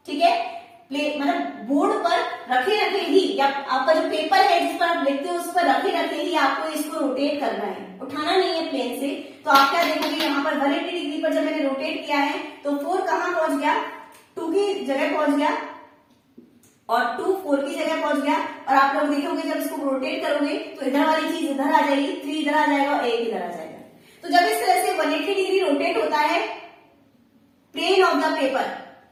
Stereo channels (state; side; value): identical; both; correlation 1.00